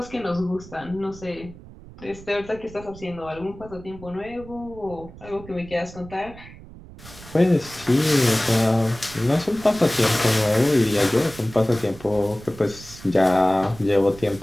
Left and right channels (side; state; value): right; noise; rumble, 18 dB below the sound